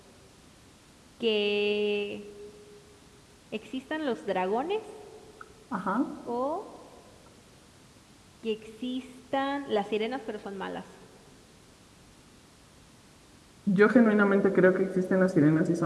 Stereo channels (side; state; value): both; identical; correlation 1.00